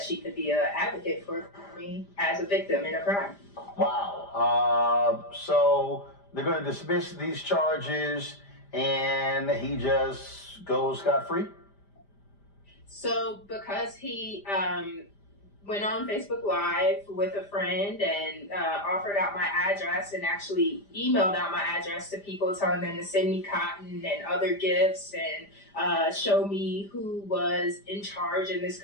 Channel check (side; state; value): right; late; 5.0 ms